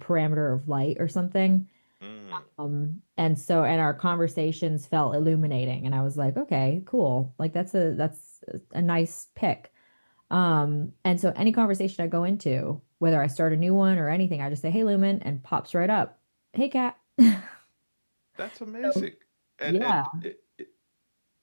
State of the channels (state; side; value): inverted; both; correlation -1.00